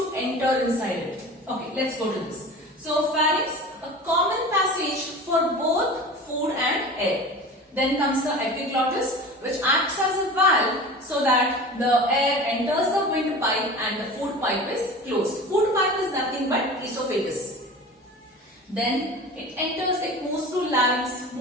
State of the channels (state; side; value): normal; both; correlation 0.36